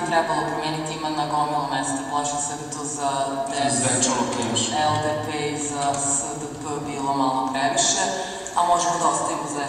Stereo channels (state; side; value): identical; both; correlation 1.00